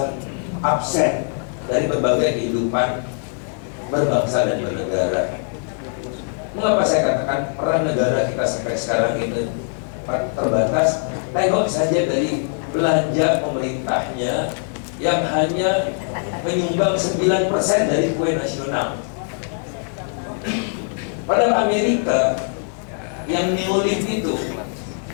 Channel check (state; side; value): silent; right; 56 dB below the other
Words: absen dari berbagai kehidupan berbangsa dan bernegara. Mengapa saya katakan peran negara kita sampai sekarang itu terbatas? Tengok saja dari belanja pemerintahnya yang hanya menyumbang 9% dari kue nasional. Padahal Amerika yang neolib itu,